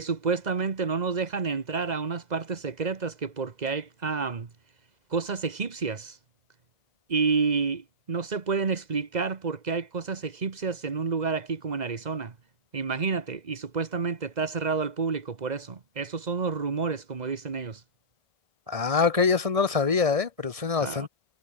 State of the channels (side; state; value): left; late; 1.6 ms